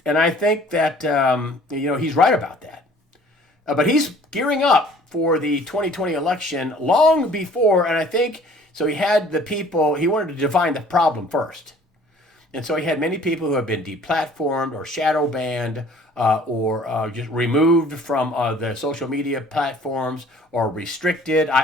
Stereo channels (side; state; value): both; normal; correlation 0.53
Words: think that he's right about that. But he's gearing up for the 2020 election long before, and I think so. He had the people. He wanted to define the problem first, and so he had many people who have been deplatformed or shadow banned or just removed from the social media platforms or restricted.